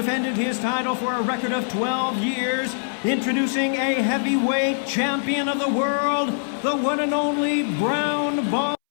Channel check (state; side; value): silent; right; 63 dB below the other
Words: his title for a record of 12 years, introducing a heavyweight champion of the world, the one and only Brown